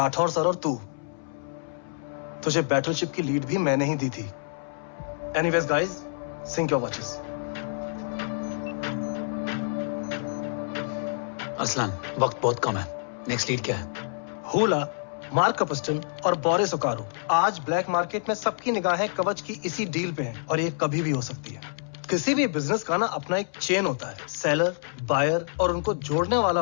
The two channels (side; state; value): right; silent; 60 dB below the other